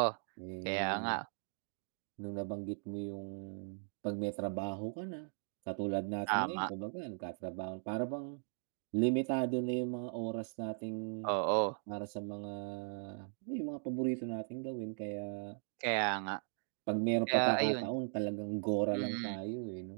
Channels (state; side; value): silent; left; digital silence